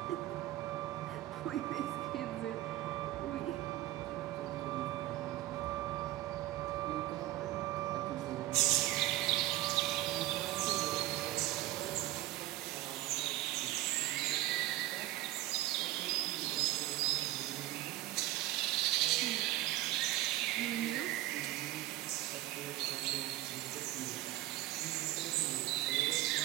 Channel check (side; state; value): left; quieter; 16.1 dB